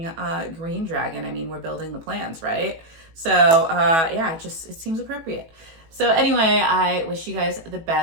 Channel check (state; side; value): late; left; 18 ms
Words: green dragon? I mean, we're building the plans, right? So yeah, it seems appropriate. So anyway, I wish you guys the